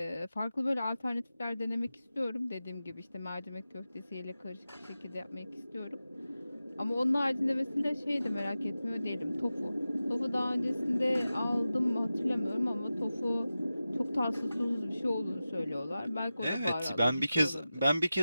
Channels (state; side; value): inverted; both; correlation -0.94